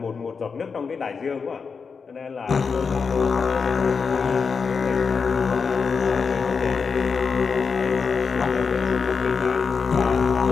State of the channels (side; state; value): right; quieter; 5.5 dB